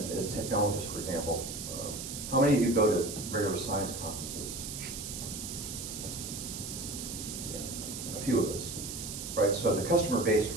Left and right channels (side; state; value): right; noise; hiss, 7 dB below the sound